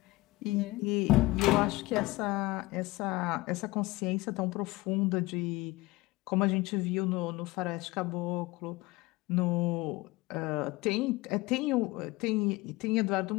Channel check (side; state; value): right; quieter; 20.8 dB